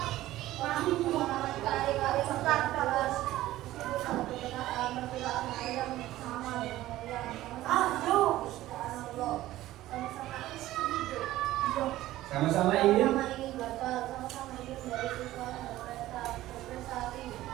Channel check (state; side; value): quieter; left; 15.4 dB